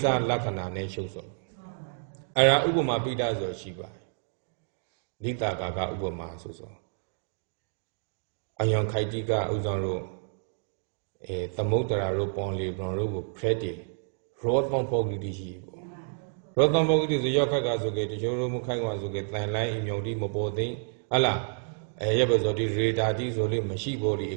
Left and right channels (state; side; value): silent; left; digital silence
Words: စလက္ခဏာနဲ့ရှုပ်စောအဲ့ဒါဥပမာပိဋကဆိုရှိပါတယ်လိတာကာကဥပမာဆိုအယံခိုက်တိကဥဆောင်လို့သမုဒ္ဒရာတို့ပွန်လီဘွန်တို့ကိုဖရက်တီရောသံပုဂ္ဂိတိရှိပေါ့ရောသံပုဂ္ဂိတိဆိုရောက်ခက်ကဆိုကေတချို့တို့မခိုင်ကွာဆိုကေတန်လိုင်းအမြုံတိမပေါ်သိဟလားရပ်ပဲဆိုဒီရေဒါတိဆိုလေးမရှိပေါ်ဒီ